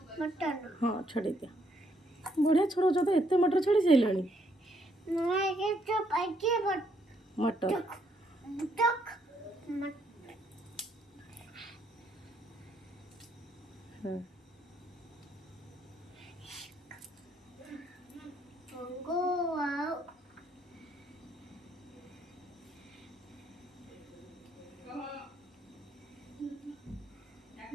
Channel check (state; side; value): normal; both; correlation 0.72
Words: हाँ छड़े दिया बढ़िया छड़ौच तो एत मटर छड़ी सारे मटर हाँ